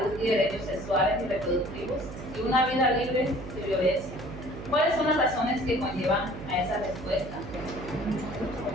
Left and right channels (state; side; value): noise; right; hum, 11 dB below the sound